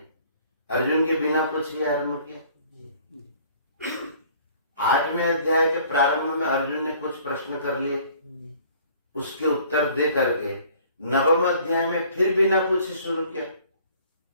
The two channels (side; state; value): both; inverted; correlation -0.54